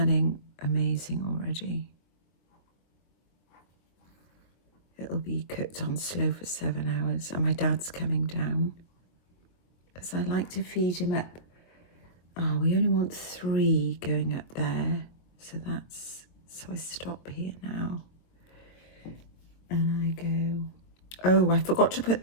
amazing already. It'll be cooked on slow for 7 hours, and my dad's coming down because I like to feed him up. Oh, we only want 3 going up there, so I stop here now. And I go, oh, I forgot to put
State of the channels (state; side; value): late; right; 23 ms